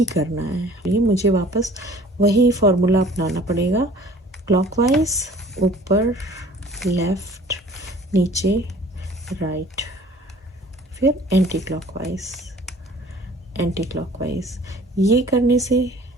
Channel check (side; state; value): both; normal; correlation 0.50